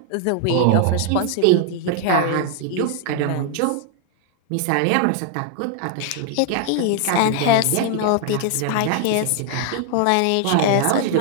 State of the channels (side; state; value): both; different; correlation 0.00